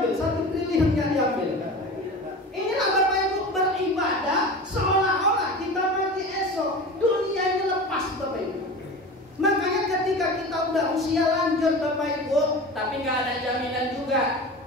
1 triliun yang diambil. Inilah Bapak Ibu beribadah seolah-olah kita mati esok, dunia ini lepas Bapak Ibu. Makanya ketika kita udah usia lanjut Bapak Ibu, tapi nggak ada jaminan juga.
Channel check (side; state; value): both; normal; correlation 0.32